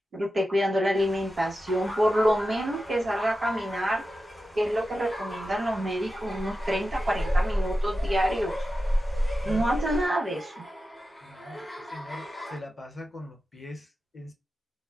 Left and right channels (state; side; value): normal; both; correlation 0.92